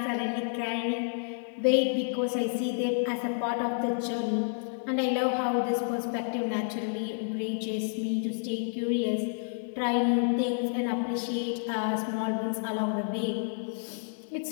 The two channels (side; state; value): right; silent; digital silence